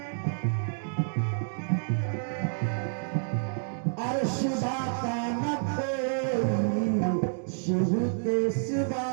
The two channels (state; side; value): silent; left; digital silence